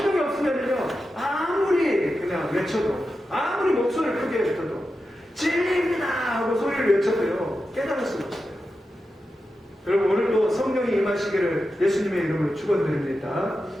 없으면요, 아무리 그냥 외쳐도, 아무리 목소리를 크게 외쳐도 진리입니다 하고 소리를 외쳐도요, 깨달을 수가 없어요. 여러분, 오늘도 성령이 임하시기를 예수님의 이름으로 축원드립니다.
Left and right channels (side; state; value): both; normal; correlation 0.90